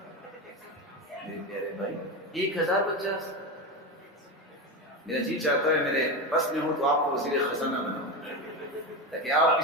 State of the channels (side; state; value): both; normal; correlation 0.18